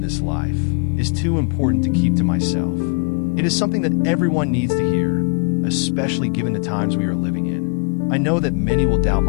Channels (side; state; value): right; quieter; 38.6 dB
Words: this life, is too important to keep to myself. It is something that everyone needs to hear, especially given the times we are living in. I know that many will doubt